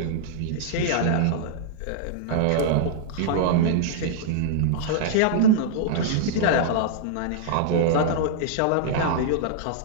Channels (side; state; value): both; different; correlation -0.02